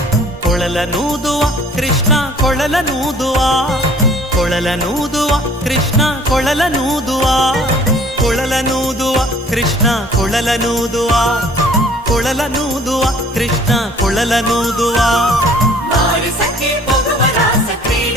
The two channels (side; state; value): both; normal; correlation 0.54